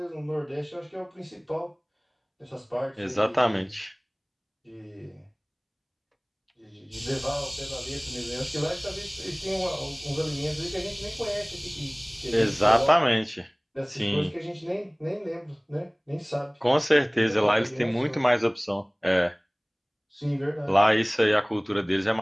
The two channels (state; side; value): identical; both; correlation 1.00